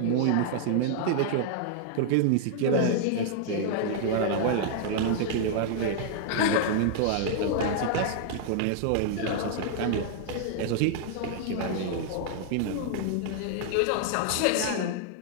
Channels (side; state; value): both; different; correlation -0.01